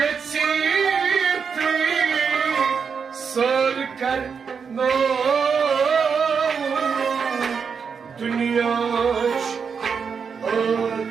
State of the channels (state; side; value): quieter; left; 6.1 dB